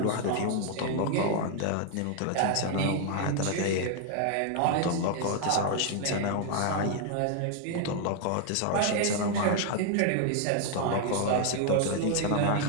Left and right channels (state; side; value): different; both; correlation 0.00